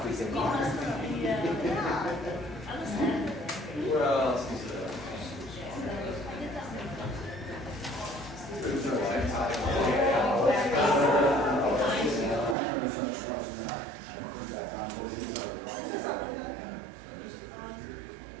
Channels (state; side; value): drops out; left; at 12.6 s